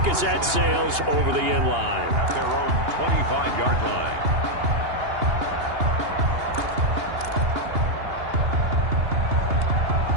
as that sails over the end line. At their own 25-yard line.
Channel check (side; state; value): left; late; 2.8 ms